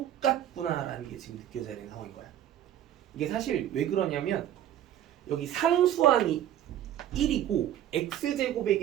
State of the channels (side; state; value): left; quieter; 11.4 dB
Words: 게 지금 느껴져야 되는 상황인 거야. 이게 사실 왜 그러냐면 여기 상수항이 1이고 x제곱의